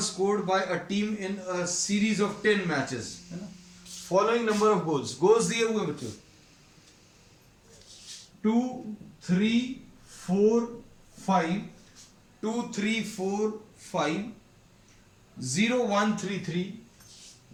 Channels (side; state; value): both; identical; correlation 1.00